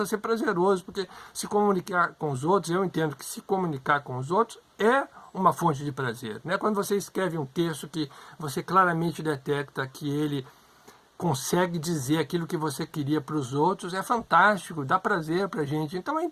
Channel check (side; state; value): both; identical; correlation 1.00